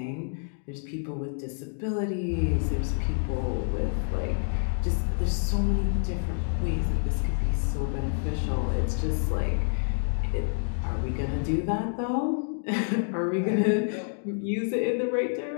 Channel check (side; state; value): right; silent; digital silence